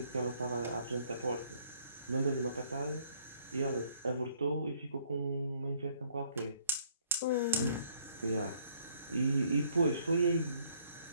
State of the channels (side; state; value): both; inverted; correlation -0.64